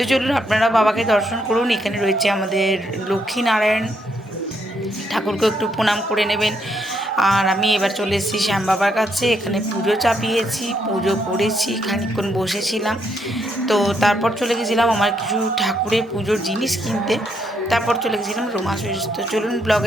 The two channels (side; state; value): both; normal; correlation 0.75